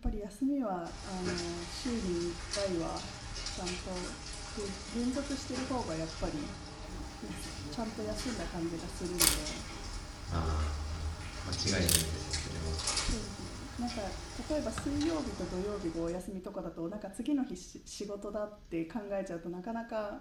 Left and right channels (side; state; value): both; identical; correlation 1.00